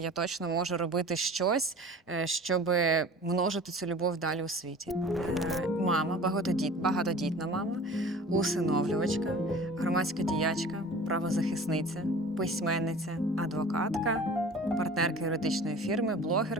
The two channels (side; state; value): both; normal; correlation 0.42